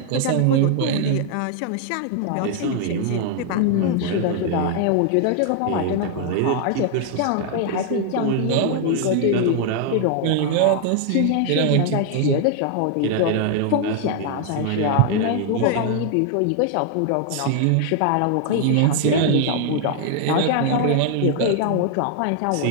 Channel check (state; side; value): different; both; correlation 0.00